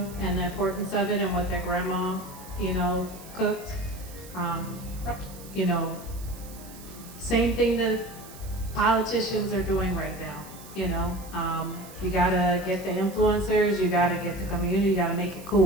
and the importance of it and what their grandma, you know, cooked. You know, same thing that politicians are doing right now, you know. You gotta get the influencers, you gotta get the community, you gotta make it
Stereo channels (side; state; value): right; noise; hiss, 18 dB below the sound